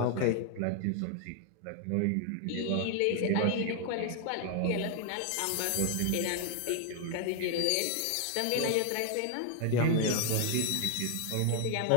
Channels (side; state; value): both; different; correlation 0.00